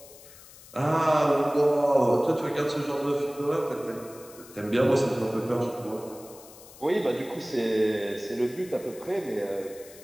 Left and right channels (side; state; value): left; noise; hiss, 20 dB below the sound